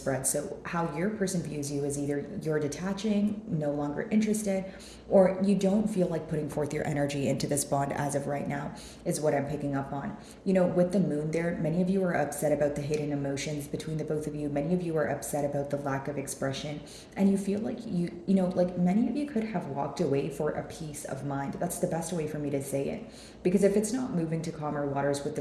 So how your person views you is either you're detaching, no longer interested, or you don't feel like putting forth your energy into this bond as of right now, is what I'm picking up on. With the moon there, many of you are upset about the hidden emotions between the both of you. Many of you are upset about the lack of expression, and you feel like like many of you could have walked away for a peace of mind. That's the best way for me to say it. Because if it's not moving to calmer waters with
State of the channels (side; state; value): both; identical; correlation 1.00